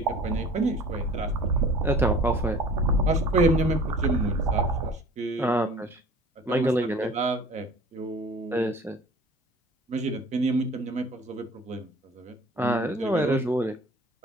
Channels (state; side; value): normal; both; correlation 0.46